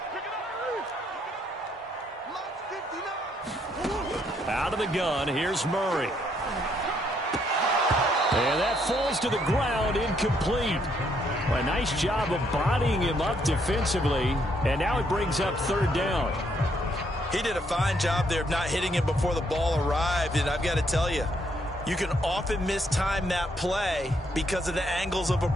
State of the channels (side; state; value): both; normal; correlation 0.72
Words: Out of the gun, here's Murray. And that falls to the ground, incomplete. A nice job of bodying him up defensively, and now it brings up 3rd down. He did a fine job there of not hitting him before the ball arrived, and I've got to tell you, you can often mistime that play because of the angles of